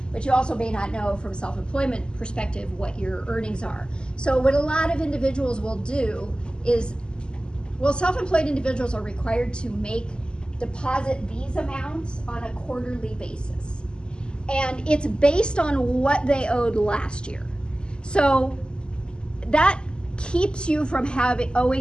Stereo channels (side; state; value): right; late; 0.049 ms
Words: but you also may not know from self-employment perspective what your earnings are. So what a lot of individuals will do is, well, self-employed individuals are required to deposit these amounts on a quarterly basis. And it's based on what they owed last year. So that keeps you from